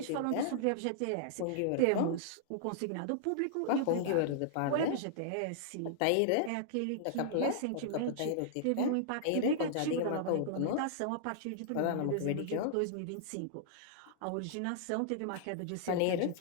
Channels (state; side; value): different; both; correlation -0.01